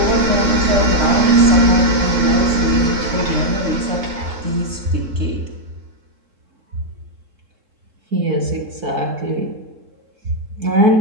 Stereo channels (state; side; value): late; left; 3.7 ms